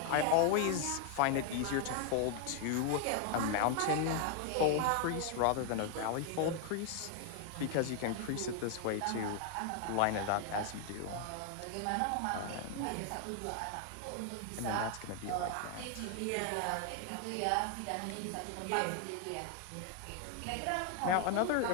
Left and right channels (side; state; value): both; different; correlation 0.00